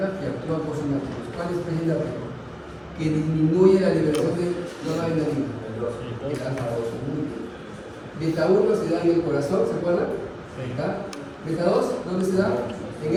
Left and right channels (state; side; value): identical; both; correlation 1.00